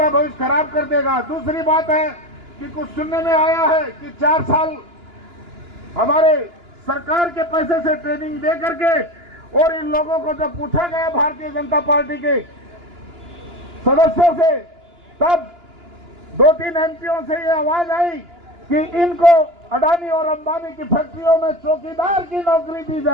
भविष्य खराब कर देगा। दूसरी बात है कि कुछ सुनने में आया है कि 4 साल हमारे सरकार के पैसे से ट्रेनिंग दे करके, और इन लोगों को जब पूछा गया भारतीय जनता पार्टी के सदस्यों से, तब 2-3 एमपीओ से ये आवाज आई कि इनको अडानी और अंबानी की फैक्ट्रियों में चौकीदार की नौकरी दी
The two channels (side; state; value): left; late; 2.9 ms